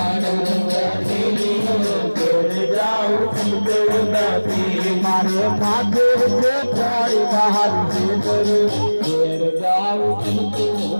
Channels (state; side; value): inverted; both; correlation -1.00